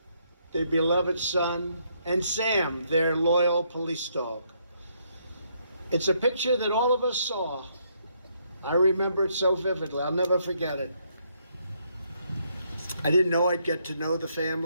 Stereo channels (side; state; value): both; inverted; correlation -0.73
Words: their beloved son, and Sam, their loyal police dog. It's a picture that all of us saw. I remember it so vividly. I'll never forget it. I didn't know I'd get to know the